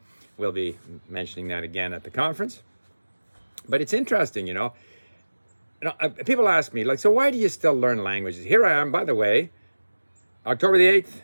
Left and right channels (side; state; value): both; inverted; correlation -1.00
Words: We'll be mentioning that again at the conference. But it's interesting, people ask me, so why do you still learn languages? Here I am, by the way, October the 8th,